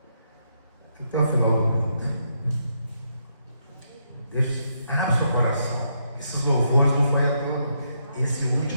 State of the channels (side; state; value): both; inverted; correlation -0.78